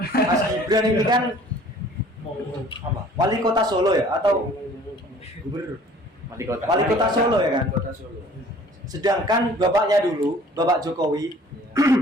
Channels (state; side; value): normal; both; correlation 0.52